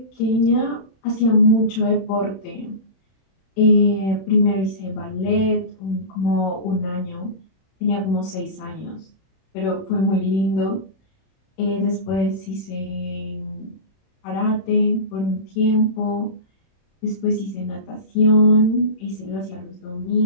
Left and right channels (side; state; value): right; late; 31 ms